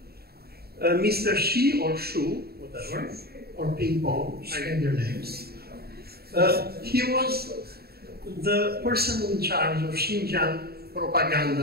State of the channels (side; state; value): left; late; 0.45 ms